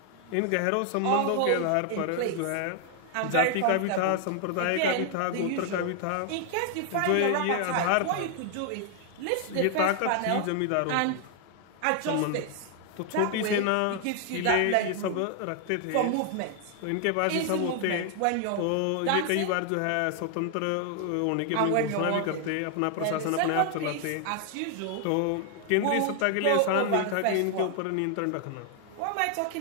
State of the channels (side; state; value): both; different; correlation 0.00